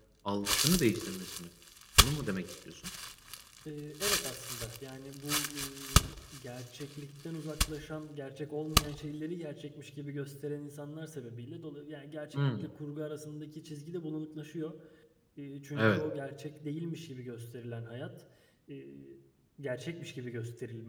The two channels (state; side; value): identical; both; correlation 1.00